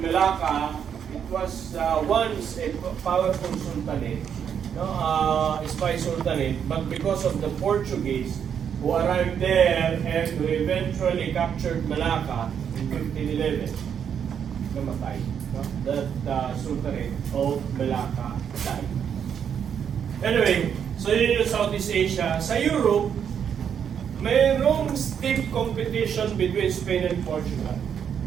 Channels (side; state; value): left; quieter; 8.0 dB